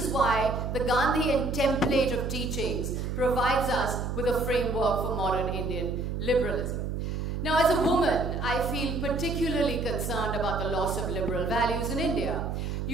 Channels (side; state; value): right; noise; hum, 3 dB below the sound